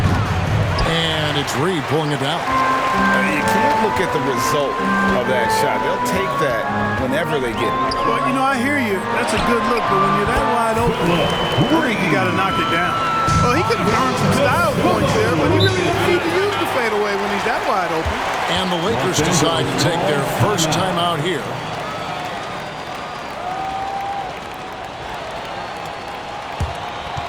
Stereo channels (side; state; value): both; identical; correlation 1.00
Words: And it's Reed pulling it down. You can't look at the result of that shot. They'll take that whenever they get it. Well, you know, I hear you. That's a good look, but when you're that wide open, you got to knock it down. Well, he could have earned some style points there, but he really didn't need to use the fadeaway when he's that wide open. And the Lakers decide to take their first time out here.